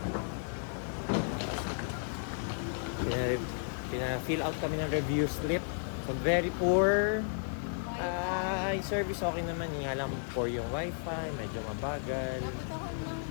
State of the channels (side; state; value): right; silent; digital silence